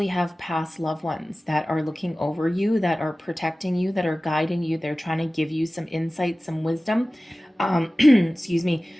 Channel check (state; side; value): normal; both; correlation 0.97